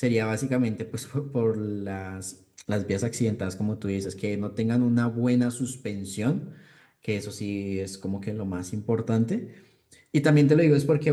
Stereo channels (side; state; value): both; identical; correlation 1.00